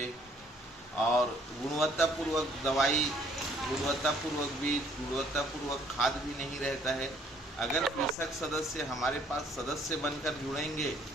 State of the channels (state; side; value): normal; both; correlation 0.62